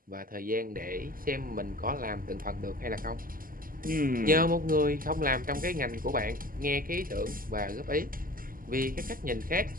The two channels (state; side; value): late; left; 0.41 ms